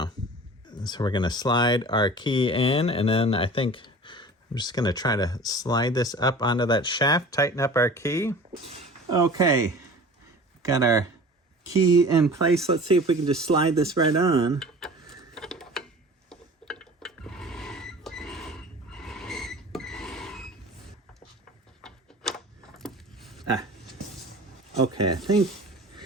So we're gonna slide our key in, and then I think I'm just gonna try to slide this up onto that shaft, tighten up our key. Okay, got our key in place. Let's see if we can just slide this right on. Okay, I think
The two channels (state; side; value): normal; both; correlation 0.41